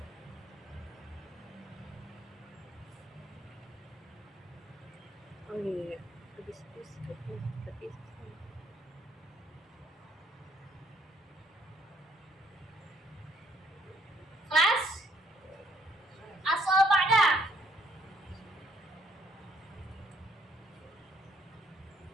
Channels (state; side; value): normal; both; correlation 0.68